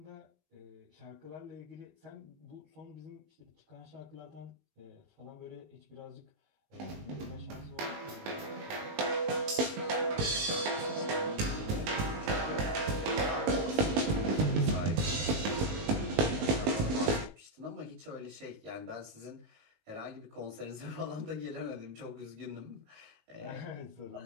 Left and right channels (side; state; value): left; late; 19 ms